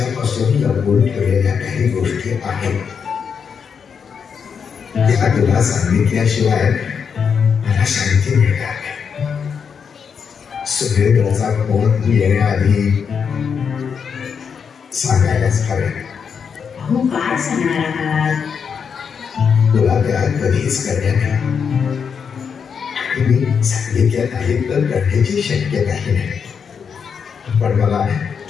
लपवून ठेवलेल्या काही गोष्टी आहेत, त्या तुला सांगितल्याशिवाय मला शांती मिळणार नाही. सुरेंद्रचा फोन येण्याआधी सांगायलाच हवे. अहो काय सांगणार आहात? तुला त्या कधीच करण्यात नाही. मी सांगितल्या नाही तर करण्याची शक्यताही नाही. पण मला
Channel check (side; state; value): right; quieter; 6.6 dB